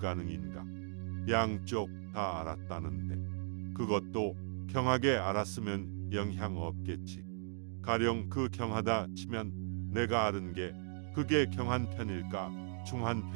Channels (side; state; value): left; silent; digital silence